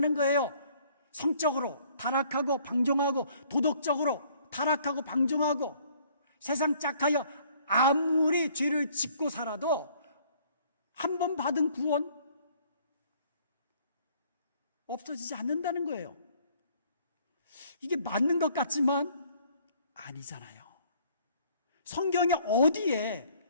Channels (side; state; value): both; inverted; correlation -0.60